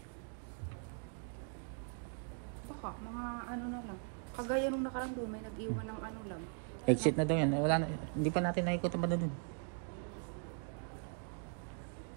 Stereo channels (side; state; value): left; silent; 51 dB below the other